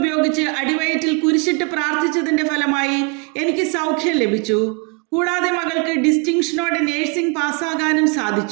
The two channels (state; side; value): quieter; left; 32.0 dB